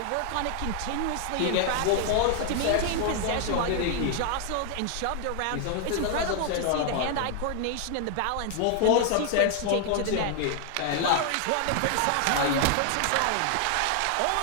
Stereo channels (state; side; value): different; both; correlation 0.00